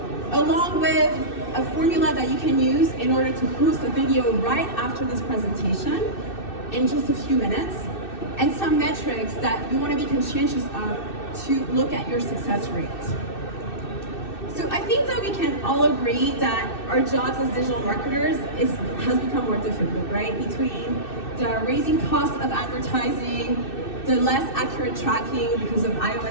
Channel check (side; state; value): right; late; 2.6 ms